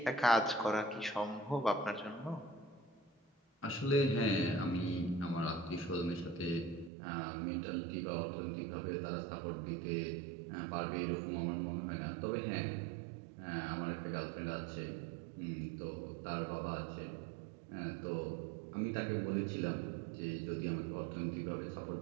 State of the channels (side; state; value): left; drops out; at 6.9 s